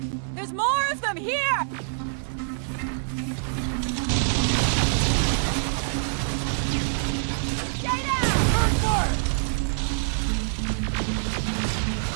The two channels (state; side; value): silent; left; digital silence